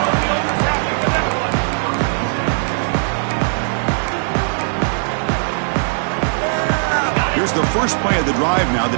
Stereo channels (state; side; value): silent; left; 67 dB below the other